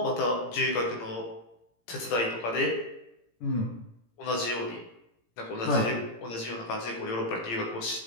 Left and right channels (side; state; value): right; late; 17 ms